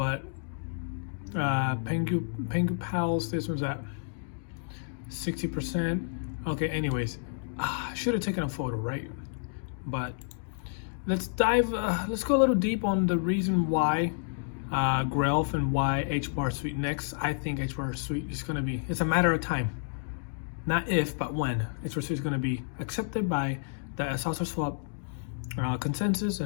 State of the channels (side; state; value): right; silent; digital silence